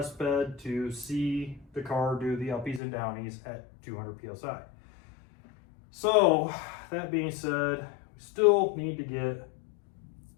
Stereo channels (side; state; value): right; drops out; at 2.8 s